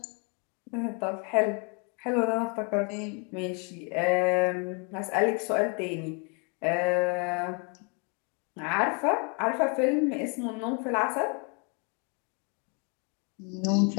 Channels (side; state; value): right; quieter; 35.6 dB